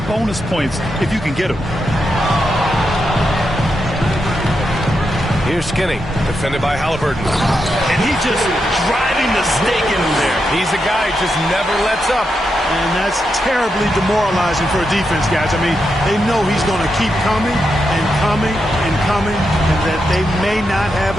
bonus points if you can get them. Here's Skinny, defended by Halliburton. And he's just driving the stake in there. He's a guy who just never lets up. And that's terribly demoralizing for a defense, guys. I mean, they know he's going to keep coming and coming and coming, and that they may not have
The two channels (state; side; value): normal; both; correlation 0.85